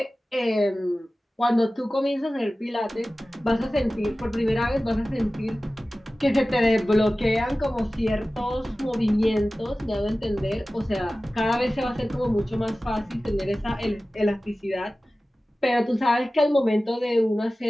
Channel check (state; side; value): normal; both; correlation 0.96